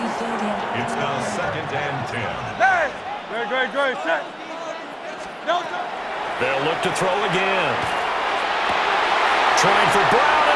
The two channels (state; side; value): identical; both; correlation 1.00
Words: It's now 2nd and 10. Hey! Great. Set. They'll look to throw again. Trying for Brown,